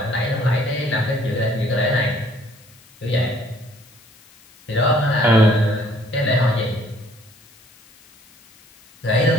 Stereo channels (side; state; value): left; noise; hiss, 27 dB below the sound